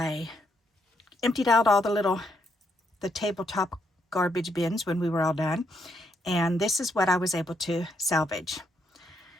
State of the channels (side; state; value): both; normal; correlation 0.76